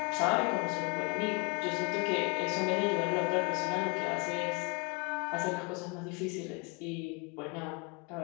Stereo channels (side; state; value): right; quieter; 30.1 dB